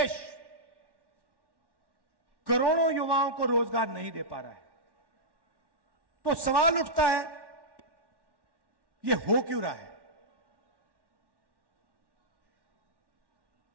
करोड़ों युवाओं को रोजगार नहीं दे पा रहा है। तो सवाल उठता है, यह हो क्यों रहा है?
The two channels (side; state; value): left; late; 1.1 ms